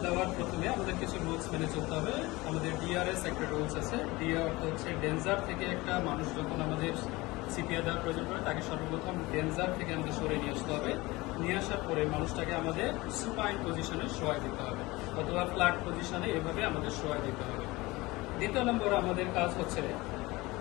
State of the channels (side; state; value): right; quieter; 21.5 dB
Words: দেওয়ার প্রথমে আমাদের কিছু রুলস মেনে চলতে হবে। আমাদের ডিআরএস একটা রুলস আছে। ডিআর অর্থ হচ্ছে ডেঞ্জার থেকে একটা মানুষ যখন আমাদের সিপিআর দেওয়ার প্রয়োজন পড়ে তাকে সর্বপ্রথম ডেঞ্জার থেকে আমাদের সরে নিয়ে আসতে হবে। নিয়ে আসার পরে মানুষটাকে আমাদের সুপাইন পজিশনে শোয়াই দিতে হবে অথবা ফ্ল্যাট পজিশনে এভাবে আমাদের শোয়াই দিতে হবে। দ্বিতীয় নম্বর আমাদের কাজ